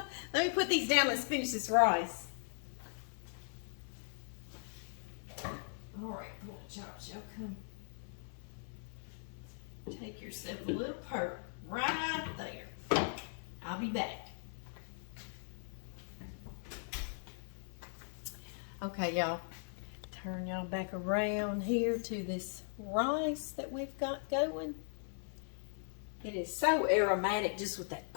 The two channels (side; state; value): right; silent; 52 dB below the other